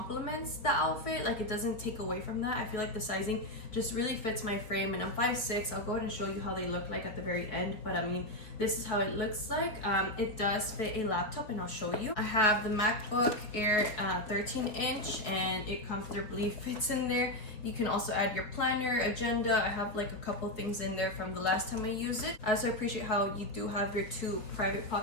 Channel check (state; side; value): late; right; 4.4 ms